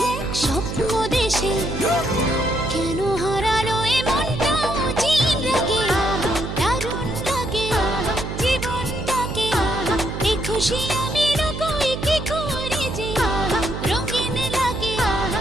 এক স্বপ্ন দেশে কেন হারালো এ মনটা চিন রাগে দারুণ লাগে জীবনটাকে এই খুশি আমি রকই কি করে যে রঙিন লাগে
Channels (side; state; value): right; noise; hum, 6 dB below the sound